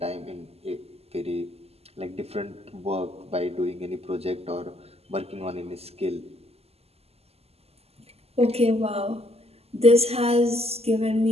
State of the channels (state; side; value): late; left; 0.29 ms